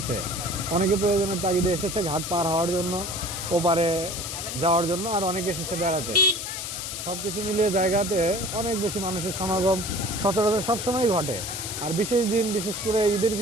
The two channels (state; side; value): noise; left; hiss, 6 dB below the sound